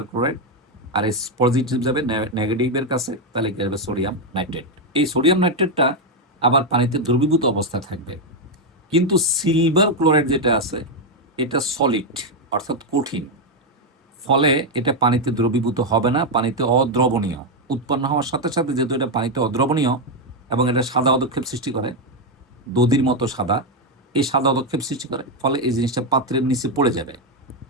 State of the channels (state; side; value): normal; both; correlation 0.04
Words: ক্লোরাইড, আর এই পজিটিভ যাবে নেগেটিভের কাছে, তাহলে কি হবে? Sodium nitrate. এই সোডিয়াম নাইট্রেটটা আবার পানিতে দ্রবীভূত অবস্থায় থাকবে। কিন্তু সিলভার ক্লোরাইড যেটা আছে, এটা সলিড অর্থাৎ কঠিন, ফলে এটা পানিতে দ্রবীভূত হবে না, পানিতে অদ্রবণীয়। উৎপন্ন হওয়ার সাথে সাথে যেহেতু এটা পানিতে অদ্রবণীয় এবং এটা সাদা অদক্ষেপ সৃষ্টি করে, দধির মতো সাদা, এই সাদা অদক্ষেপ সৃষ্টি করে, ফলে এই জিনিসটা পাত্রের নিচে পড়ে যাবে।